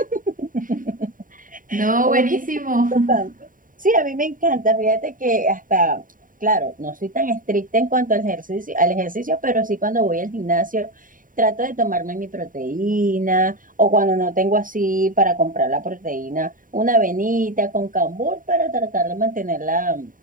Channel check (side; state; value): left; late; 0.39 ms